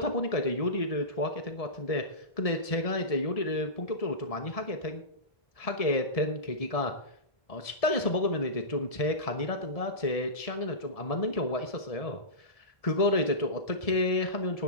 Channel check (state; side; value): late; right; 1.7 ms